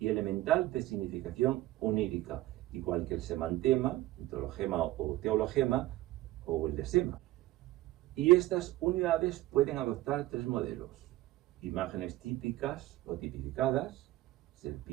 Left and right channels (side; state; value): left; quieter; 16.5 dB